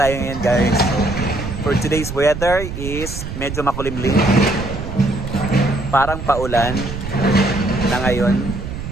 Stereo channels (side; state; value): right; noise; rumble, 7 dB below the sound